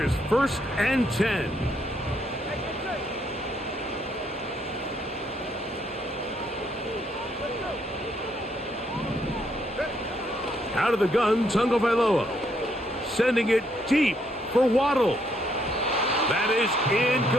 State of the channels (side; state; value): both; normal; correlation 0.72